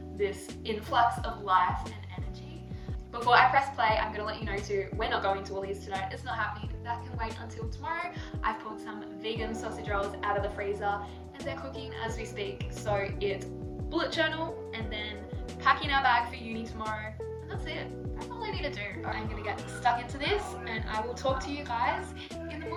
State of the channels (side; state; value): both; identical; correlation 1.00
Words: this influx of life and energy. Before I press play, I'm going to let you know too, we're not going to Woolies tonight. It's not happening. That can wait until tomorrow. I've pulled some vegan sausage rolls out of the freezer and they're cooking as we speak. So it's bullet journal and then packing our bag for uni tomorrow. And that's it. That's all I need to do. I'm going to get stuck into this and I will talk to you guys in the